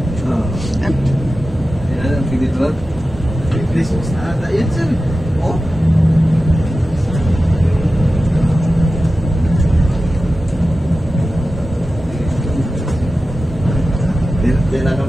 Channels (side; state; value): both; normal; correlation 0.93